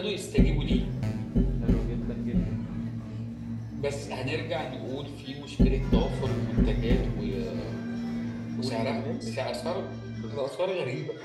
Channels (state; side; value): identical; both; correlation 1.00